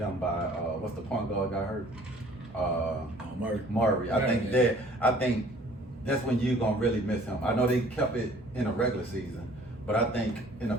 by what's the point guard got hurt? Murray. I think that's when you're gonna really miss him. I know they kept it in a regular season, but I think in the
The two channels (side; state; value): both; normal; correlation 0.53